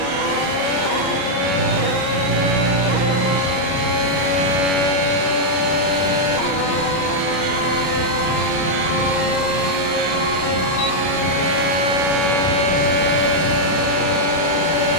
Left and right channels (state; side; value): late; right; 32 ms